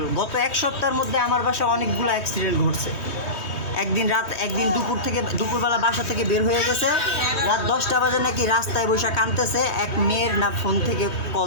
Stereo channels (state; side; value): late; right; 3.2 ms